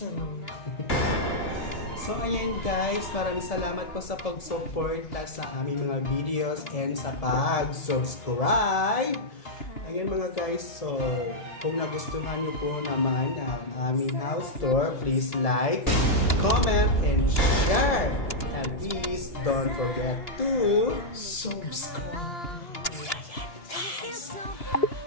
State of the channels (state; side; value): late; right; 2.9 ms